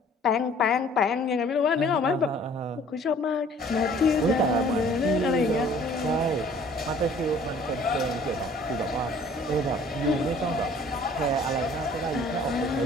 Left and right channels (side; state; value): both; normal; correlation 0.54